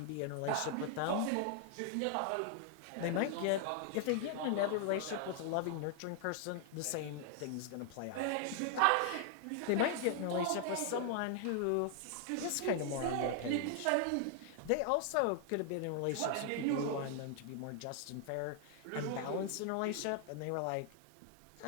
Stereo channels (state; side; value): different; both; correlation 0.00